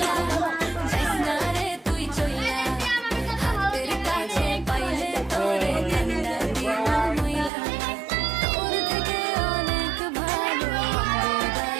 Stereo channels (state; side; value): drops out; left; at 7.5 s